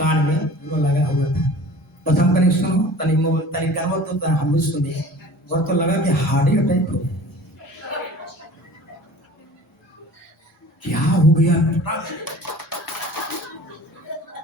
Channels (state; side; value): normal; both; correlation 0.43